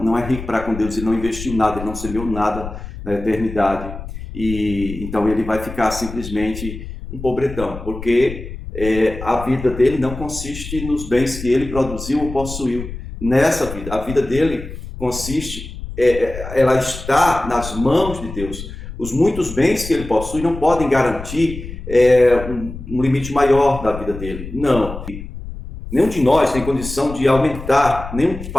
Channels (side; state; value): left; noise; rumble, 10 dB below the sound